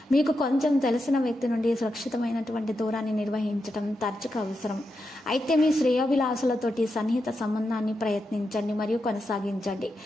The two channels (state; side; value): normal; both; correlation 0.87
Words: మీకు కొంచెం తెలిసిన వ్యక్తి నుండి సురక్షితమైనటువంటి దూరాన్ని నిర్వహించడం తరచుగా అవసరం. అయితే మీ శ్రేయోభిలాసులతోటి సన్నిహిత సంబంధాన్ని ప్రయత్నించండి మరియు కొనసాగించండి.